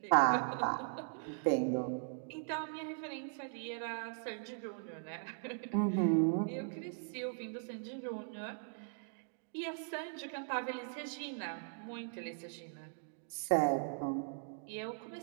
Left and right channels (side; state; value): left; silent; digital silence